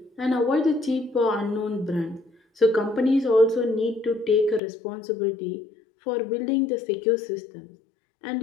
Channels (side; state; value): right; drops out; at 4.6 s